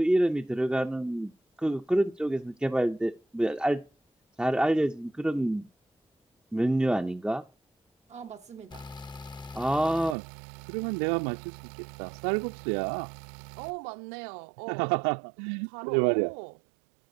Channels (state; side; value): drops out; left; at 10.2 s